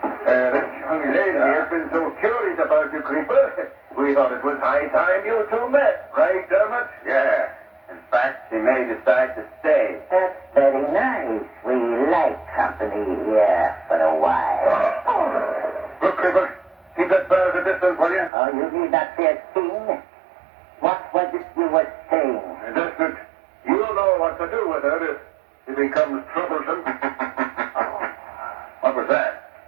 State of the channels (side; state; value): left; drops out; at 18.3 s